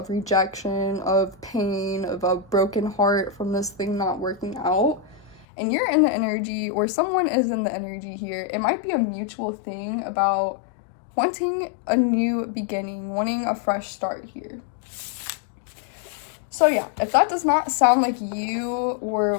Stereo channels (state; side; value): drops out; right; at 5.5 s